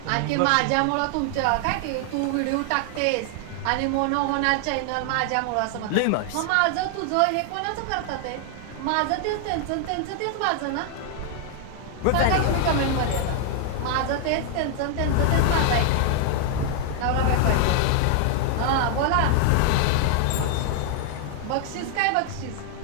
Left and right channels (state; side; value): different; both; correlation 0.00